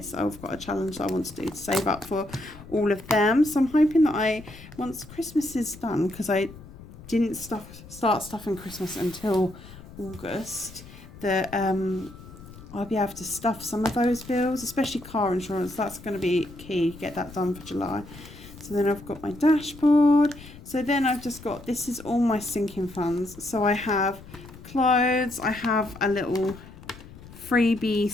I've got a challenge that I want to do to save up for all of them. So I'm hoping that once Christmas is done, because I didn't start stuffing Christmas until August, that I'll be able to stuff some of those bills, especially car insurance. That's going to be key, get that done for July. So then I've got my dashboard. So then I've just got, this is all my sinking funds. So I have clothes, I have a little freebie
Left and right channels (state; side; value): noise; left; rumble, 18 dB below the sound